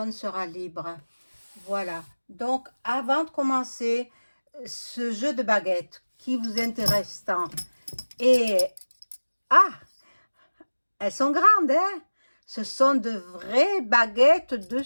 sera libre. Voilà. Donc, avant de commencer ce jeu de baguettes qui vous intéresse tant, et ah, elles sont grandes, hein? Ce sont de vraies baguettes de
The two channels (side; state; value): both; inverted; correlation -1.00